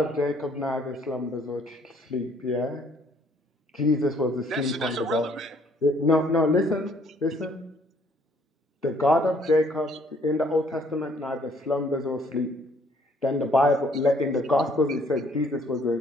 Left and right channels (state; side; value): normal; both; correlation 0.63